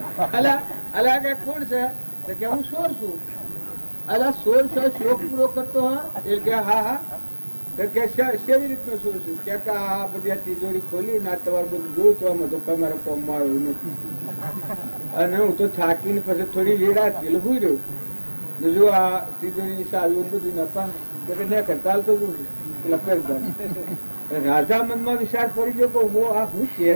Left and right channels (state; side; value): inverted; both; correlation -1.00